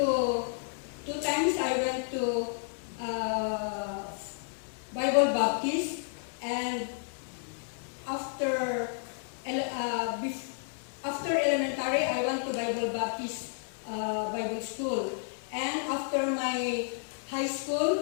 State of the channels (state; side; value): silent; right; digital silence